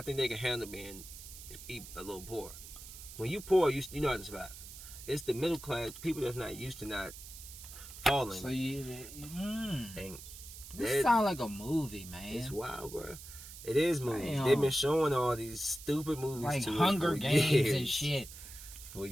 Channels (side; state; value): right; noise; hiss, 14 dB below the sound